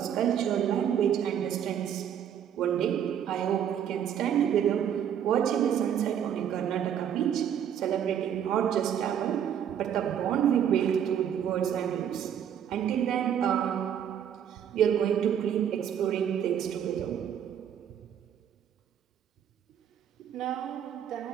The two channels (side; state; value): left; quieter; 9.2 dB